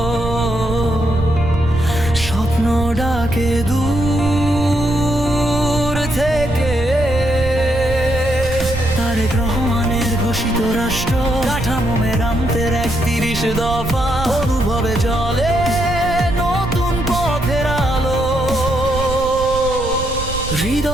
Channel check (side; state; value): right; noise; rumble, 7 dB below the sound